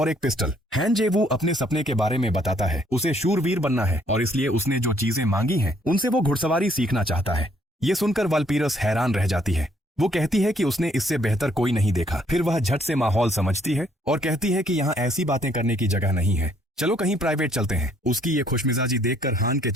एक पिस्टल। हैंजेवू अपने सपने के बारे में बताता है, उसे शूरवीर बनना है और इसलिए उसने जो चीजें मांगी हैं उनसे वो घुड़सवारी सीखना चाहता है। ये सुनकर वालपीरस हैरान रह जाती है। वो कहती है कि उसने इससे बेहतर कोई नहीं देखा। फिर वह झट से माहौल समझती है और कहती है कि यहाँ ऐसी बातें करने की जगह नहीं है, चलो कहीं प्राइवेट चलते हैं। उसकी ये खुशमिजाजी देखकर हान के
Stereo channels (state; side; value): normal; both; correlation 0.66